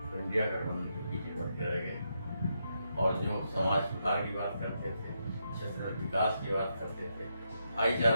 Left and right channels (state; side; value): inverted; both; correlation -0.82